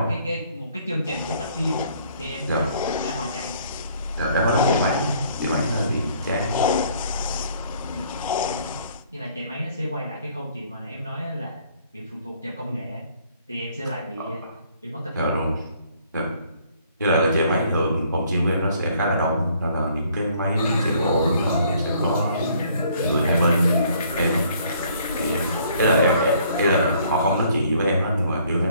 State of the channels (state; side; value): inverted; both; correlation -0.62